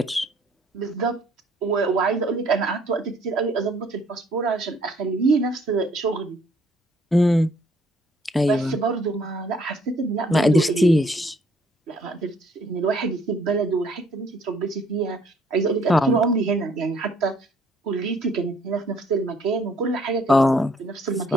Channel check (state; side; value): normal; both; correlation 0.63